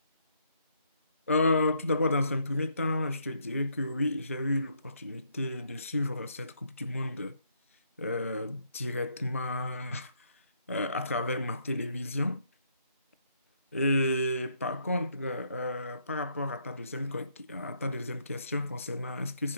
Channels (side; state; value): both; inverted; correlation -0.72